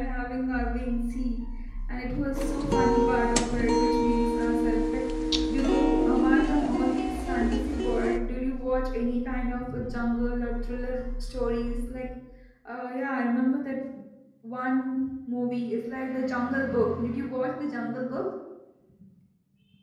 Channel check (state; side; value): identical; both; correlation 1.00